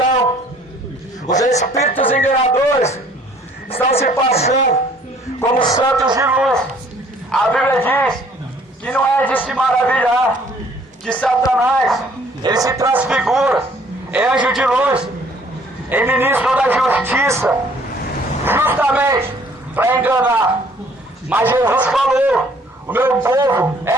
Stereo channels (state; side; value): normal; both; correlation 0.58